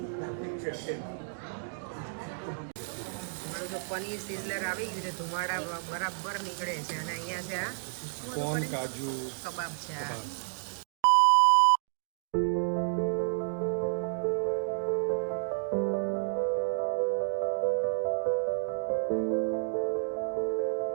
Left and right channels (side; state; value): left; silent; digital silence